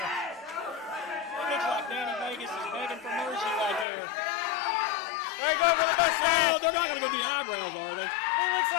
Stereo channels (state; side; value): drops out; right; at 3.9 s